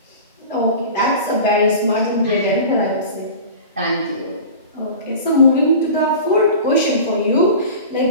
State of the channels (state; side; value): inverted; both; correlation -0.36